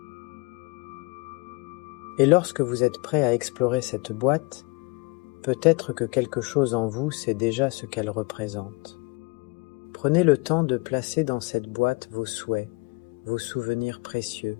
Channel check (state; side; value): quieter; right; 28.3 dB